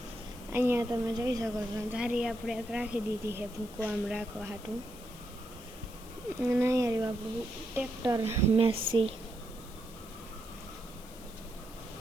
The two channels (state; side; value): noise; left; hiss, 19 dB below the sound